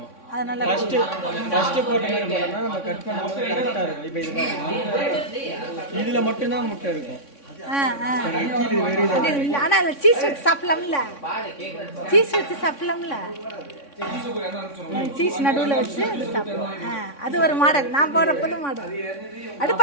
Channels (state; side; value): late; right; 3.6 ms